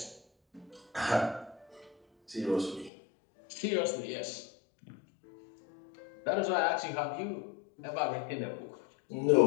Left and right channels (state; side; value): drops out; right; at 2.9 s